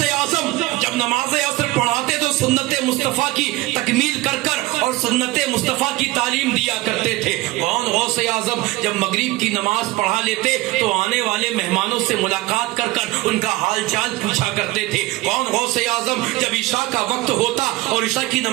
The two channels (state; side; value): quieter; left; 19.0 dB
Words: اعظم جب نماز عصر پڑھاتے تو سنت مصطفیٰ کی تکمیل کر کر اور سنت مصطفیٰ کی تعلیم دیا کرتے تھے؟ کون غوث اعظم جب مغرب کی نماز پڑھا لیتے تو آنے والے مہمانوں سے ملاقات کر کر ان کا حال چال پوچھا کرتے تھے؟ کون غوث اعظم جب عشاء کا وقت ہوتا اور عشاء کی